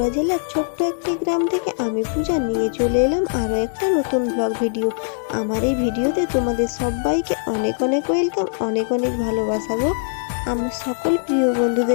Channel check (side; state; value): right; silent; 64 dB below the other